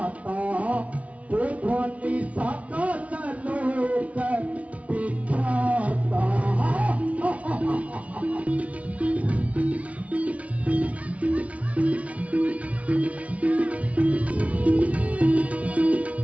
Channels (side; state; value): left; late; 0.066 ms